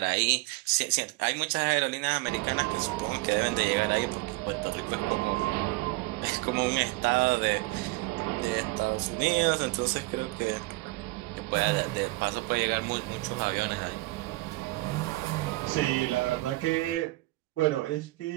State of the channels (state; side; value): quieter; left; 21.2 dB